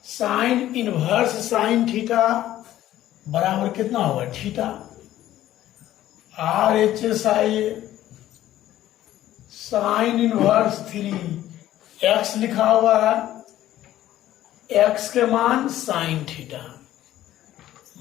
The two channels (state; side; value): quieter; right; 13.5 dB